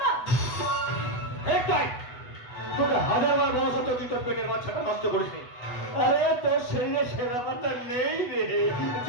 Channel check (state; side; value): late; right; 8.1 ms